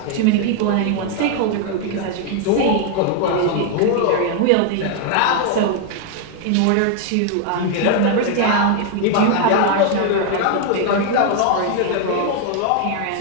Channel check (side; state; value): both; different; correlation 0.00